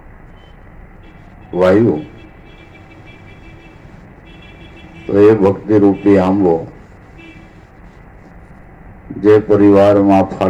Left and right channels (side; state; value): both; identical; correlation 1.00